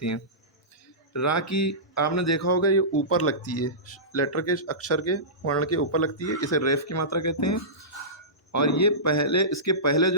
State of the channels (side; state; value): both; normal; correlation -0.20